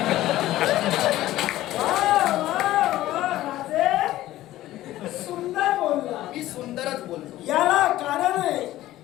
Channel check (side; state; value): right; quieter; 15.2 dB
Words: सुंदर बोलला. मी सुंदरच बोलतो. याला कारण आहे